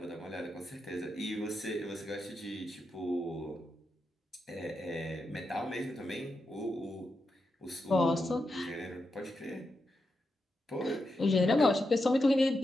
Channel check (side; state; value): both; normal; correlation 0.86